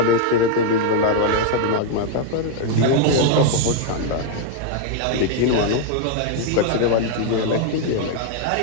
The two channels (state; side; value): different; both; correlation 0.00